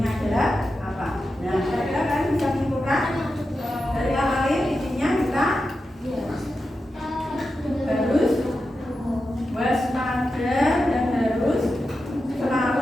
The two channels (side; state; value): both; normal; correlation 0.90